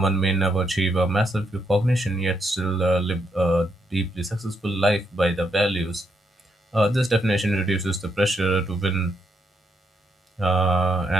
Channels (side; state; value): both; normal; correlation 0.78